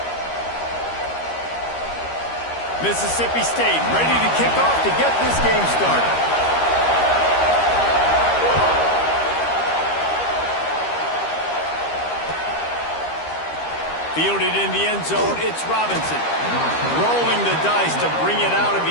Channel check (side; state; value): right; late; 13 ms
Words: Mississippi State ready to kick off to get this game started. Fielded in the end zone, it's Robinson. Rolling the dice to bring it out of the